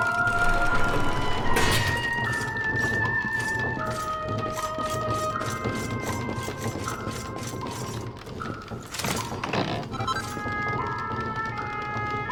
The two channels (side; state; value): both; identical; correlation 1.00